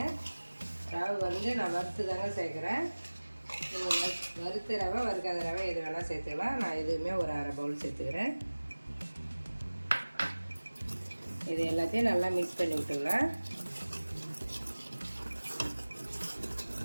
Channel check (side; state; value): both; inverted; correlation -1.00